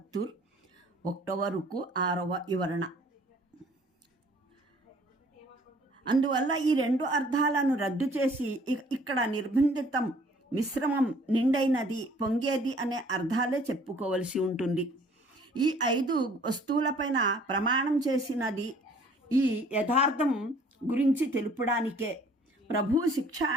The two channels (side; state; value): both; normal; correlation 0.56